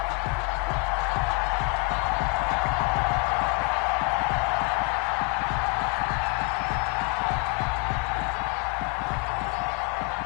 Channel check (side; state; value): right; quieter; 30.9 dB